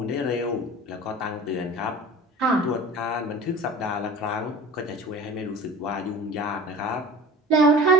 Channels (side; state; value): both; normal; correlation 0.39